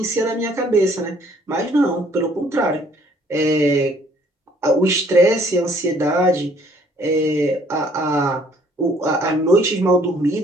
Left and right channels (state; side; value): normal; both; correlation 0.61